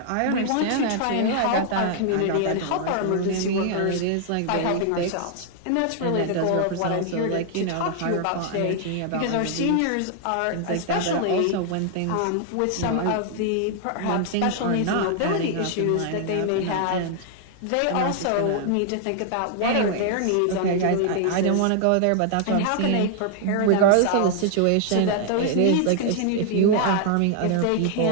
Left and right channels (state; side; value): different; both; correlation 0.00